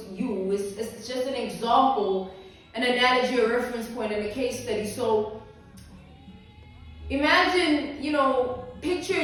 you. It's just an example, an analogy, a reference point, and a case study. So imagine,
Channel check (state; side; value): identical; both; correlation 1.00